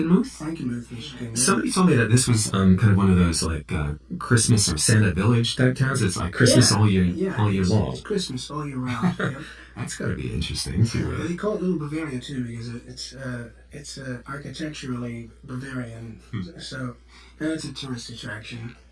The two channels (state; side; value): identical; both; correlation 1.00